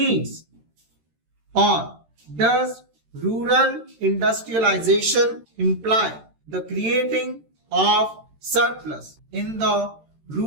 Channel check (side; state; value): left; late; 13 ms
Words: Or does rural industrialization imply the creating of surplus in the